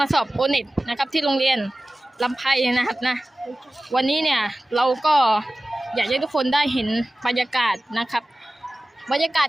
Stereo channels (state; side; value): normal; both; correlation 0.96